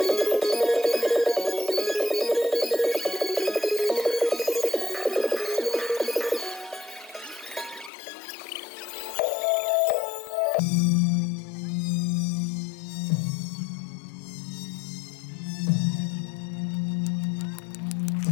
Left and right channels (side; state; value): right; drops out; at 7.9 s